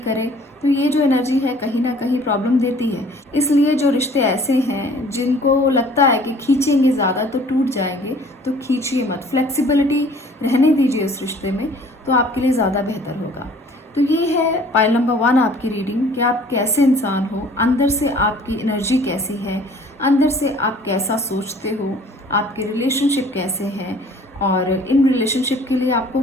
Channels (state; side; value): normal; both; correlation 0.53